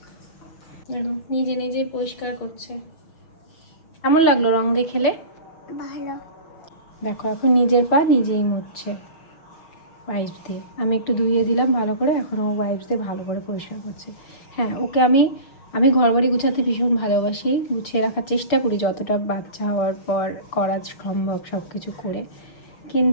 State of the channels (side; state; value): right; late; 6.7 ms